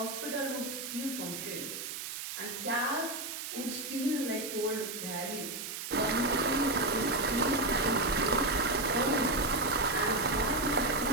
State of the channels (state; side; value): noise; right; hiss, 7 dB below the sound